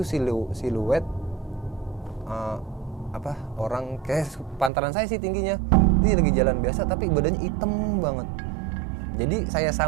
siluet orang kayak pantaran saya sih tingginya. Ini lagi jalan biasa tapi badannya hitam banget. Jadi saya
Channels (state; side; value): drops out; left; at 4.7 s